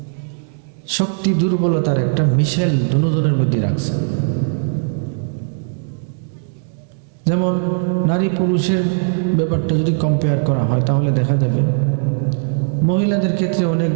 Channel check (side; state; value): left; silent; digital silence